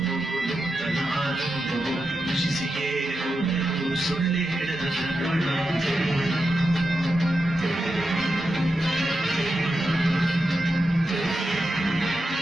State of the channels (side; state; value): both; normal; correlation 0.88